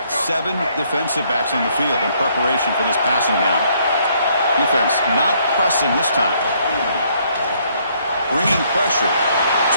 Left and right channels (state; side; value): inverted; both; correlation -0.67